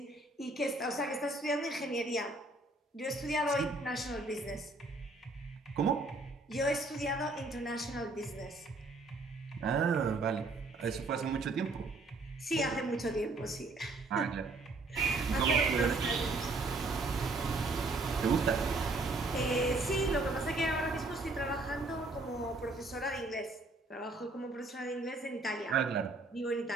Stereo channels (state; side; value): quieter; left; 3.1 dB